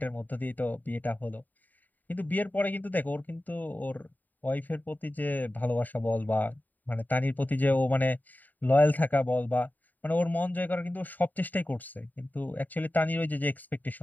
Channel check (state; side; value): late; right; 0.086 ms